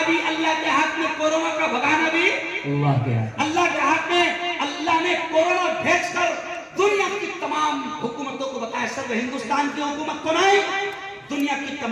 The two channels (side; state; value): both; identical; correlation 1.00